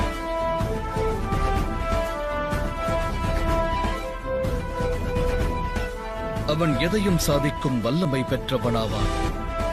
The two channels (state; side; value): identical; both; correlation 1.00